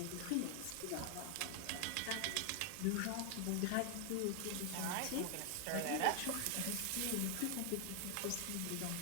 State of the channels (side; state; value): both; different; correlation 0.00